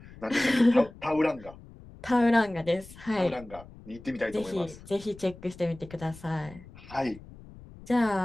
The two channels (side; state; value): left; noise; rumble, 19 dB below the sound